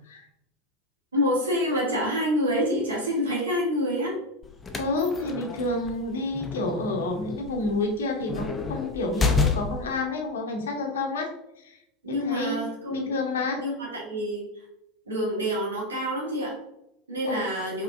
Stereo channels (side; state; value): both; normal; correlation 0.10